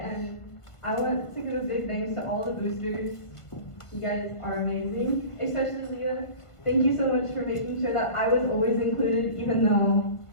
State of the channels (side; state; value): right; late; 1.5 ms